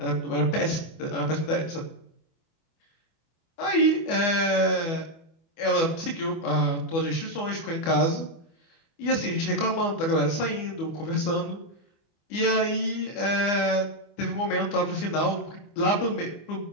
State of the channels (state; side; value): late; right; 24 ms